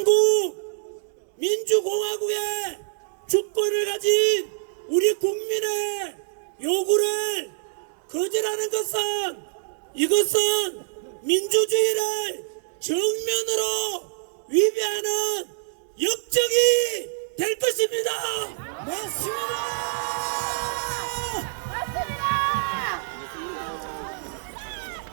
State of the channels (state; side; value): silent; left; digital silence